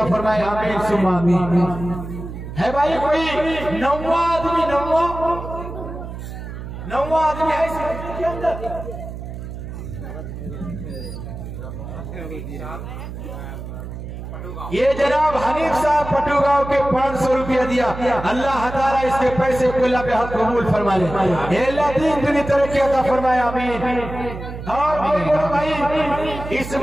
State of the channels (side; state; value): right; noise; hum, 9 dB below the sound